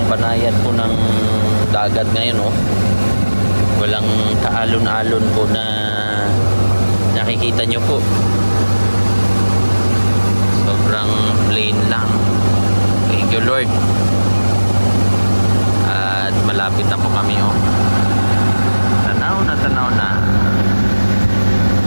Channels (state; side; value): inverted; both; correlation -1.00